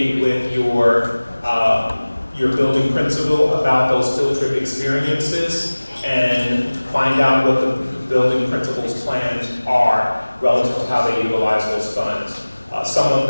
with your building principal about those field trip experiences and find out what the building principal's plans are relative to how they utilize those funds. Some of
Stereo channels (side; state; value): both; inverted; correlation -1.00